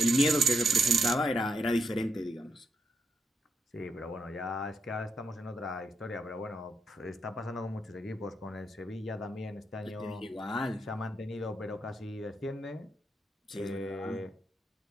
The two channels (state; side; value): normal; both; correlation 0.82